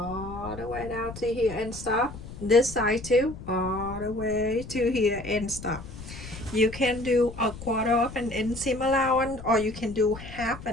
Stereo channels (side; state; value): left; noise; rumble, 13 dB below the sound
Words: the way down to here and stop. This side too, all the way to here and stop. You can do a 1/4 of an inch seam allowance, or you can do half